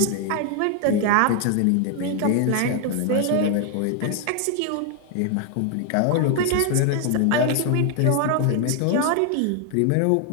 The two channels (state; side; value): different; both; correlation 0.00